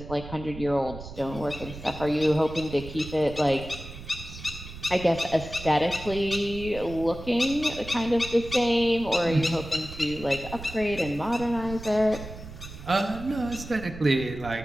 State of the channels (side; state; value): right; noise; rumble, 13 dB below the sound